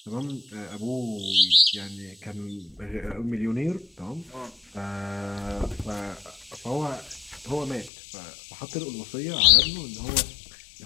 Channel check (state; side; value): drops out; right; at 7.9 s